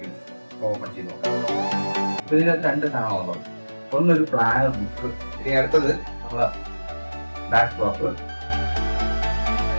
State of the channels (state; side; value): inverted; both; correlation -1.00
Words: ഓപ്പൺ ചെയ്ത് നോക്കാം. അപ്പൊ ഇതിനകത്ത് രണ്ട് സാധനമാണ്. ഒന്നൊരു പ്ലാനർ ബുക്ക്, ഇനി അടുത്തത് നമ്മളെ ബാക്ക് ഡ്രോപ്പ്.